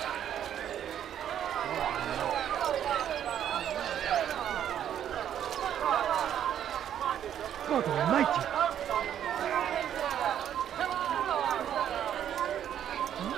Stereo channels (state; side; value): quieter; left; 10.0 dB